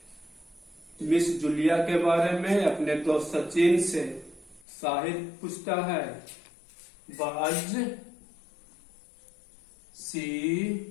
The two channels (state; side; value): drops out; right; at 4.6 s